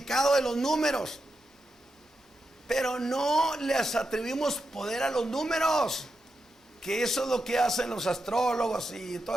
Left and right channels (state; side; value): normal; both; correlation 0.87